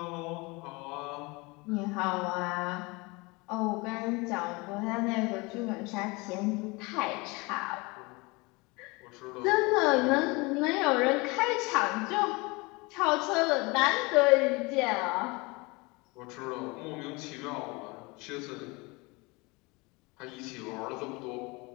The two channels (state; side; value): quieter; right; 25.8 dB